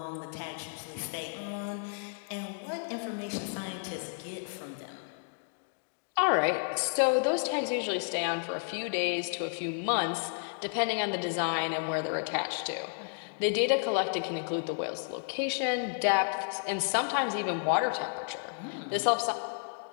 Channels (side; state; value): right; silent; digital silence